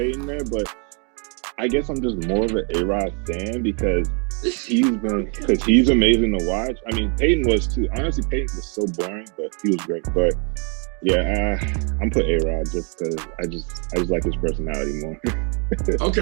there, but I guess I'm just more of an A-Rod fan because he's amazing to watch. I mean, Peyton was too. Honestly, Peyton was so boring, but he was great. But yeah, I'm put A-Rod just because I just like his personality more.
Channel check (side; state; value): left; quieter; 37.0 dB